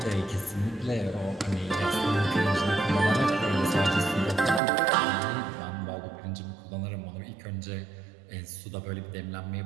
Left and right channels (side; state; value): left; drops out; at 4.6 s